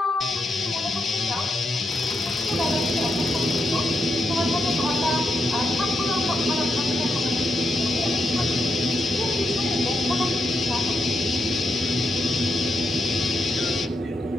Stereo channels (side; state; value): both; normal; correlation 0.82